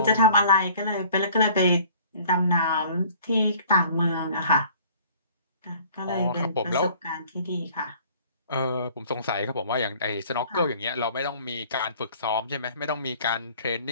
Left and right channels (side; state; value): both; inverted; correlation -0.52